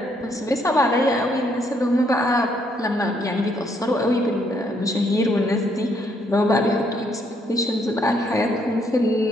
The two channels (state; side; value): normal; both; correlation 0.71